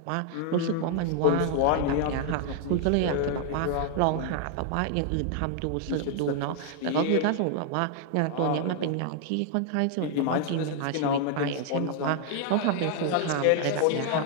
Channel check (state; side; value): different; both; correlation 0.00